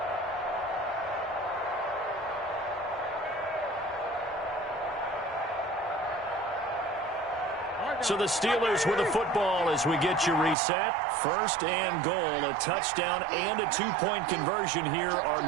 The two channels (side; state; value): left; drops out; at 10.6 s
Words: So the Steelers with the football as we get you reset. 1st and goal, a touchdown and a 2-point conversion here